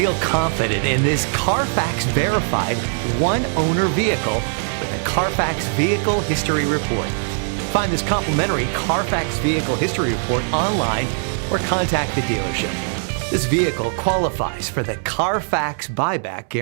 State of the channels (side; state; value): left; silent; digital silence